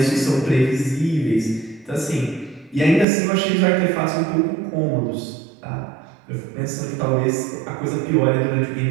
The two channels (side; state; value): left; drops out; at 3.1 s